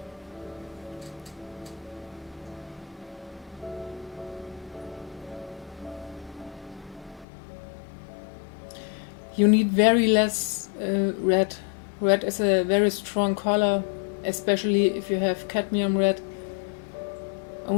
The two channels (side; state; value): right; drops out; at 7.2 s